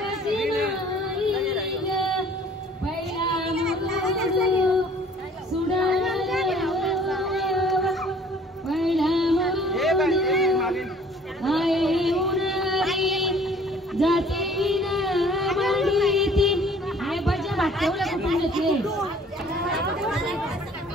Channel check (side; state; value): both; normal; correlation 0.54